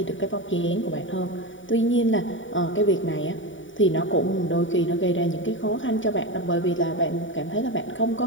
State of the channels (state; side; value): late; right; 0.56 ms